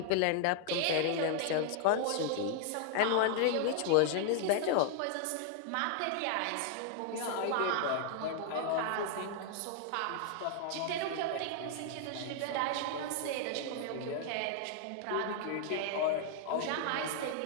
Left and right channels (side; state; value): both; different; correlation 0.00